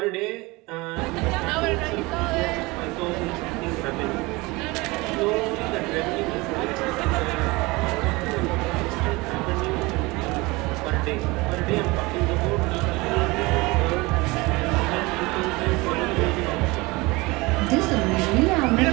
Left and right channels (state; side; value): quieter; left; 23.3 dB